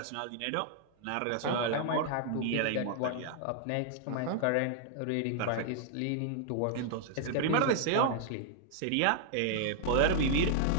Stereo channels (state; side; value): different; both; correlation -0.01